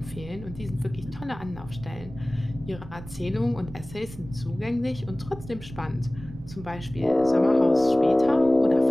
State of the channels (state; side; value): noise; right; rumble, 15 dB below the sound